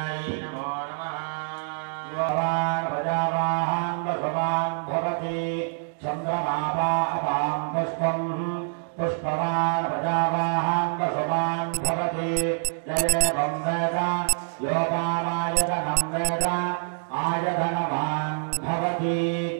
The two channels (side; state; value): left; silent; digital silence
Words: नमो नमः योवान् प्रजावाहान् वसवान् भवति चन्द्रमापा अपां पुष्पम् पुष्पवान् प्रजावाहान् वसवान् भवति जयेवं वेद योपामायतनं वेद आयतनवान् भवति